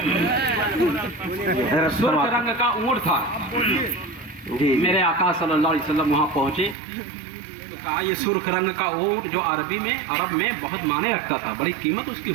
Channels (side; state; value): left; drops out; at 6.8 s